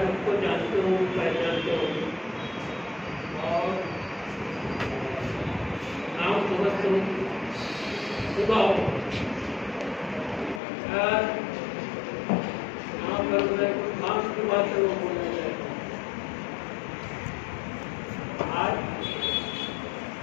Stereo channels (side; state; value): right; drops out; at 10.6 s